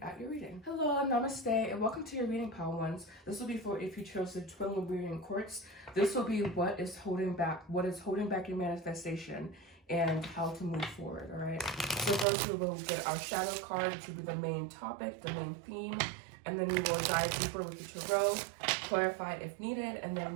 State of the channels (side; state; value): left; drops out; at 12.2 s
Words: at your reading. Hello, namaste, and welcome to your reading, pile 1s. This will be for if you chose the twin Lemurian quartz. This will be what is holding back your manifestation and how to move forward, all right? So first we will get our shadow card, which will be the main topic, the main theme, and then we will dive deeper with the tarot, clarify if needed, and then